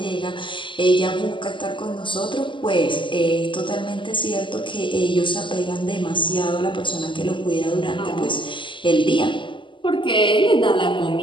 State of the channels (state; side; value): late; right; 0.24 ms